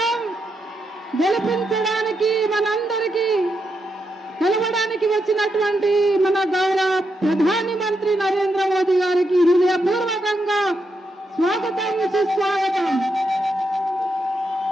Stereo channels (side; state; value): both; normal; correlation 0.83